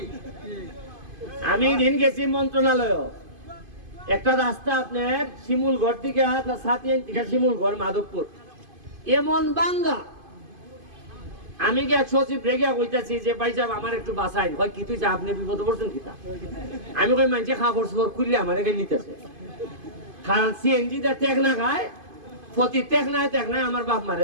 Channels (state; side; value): late; left; 2.5 ms